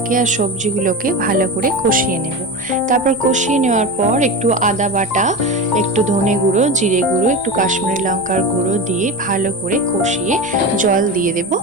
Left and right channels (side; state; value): both; normal; correlation 0.24